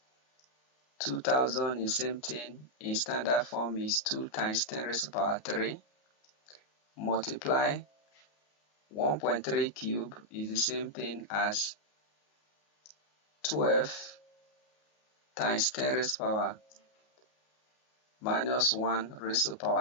2000 is same thing in standard form is 2 times 10 raised to the power 3. Multiply 1.3 cube is the same thing as 12 times 10 raised to the power minus 1 raised to the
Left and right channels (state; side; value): late; right; 33 ms